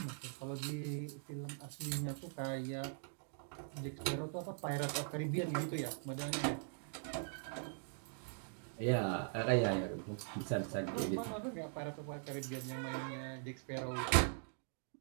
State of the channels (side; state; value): left; silent; digital silence